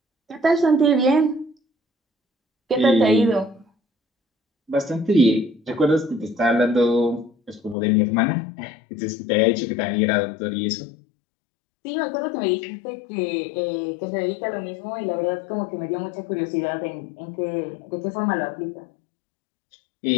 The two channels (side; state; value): right; drops out; at 7.8 s